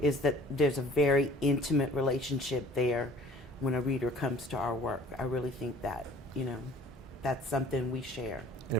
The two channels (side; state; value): both; normal; correlation 0.51